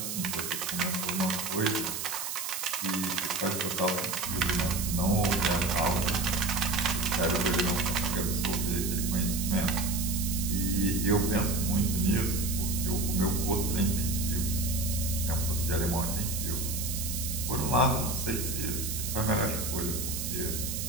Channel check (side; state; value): right; noise; hiss, 4 dB below the sound